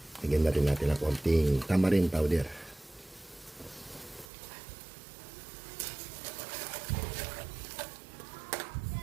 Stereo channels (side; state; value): left; drops out; at 4.2 s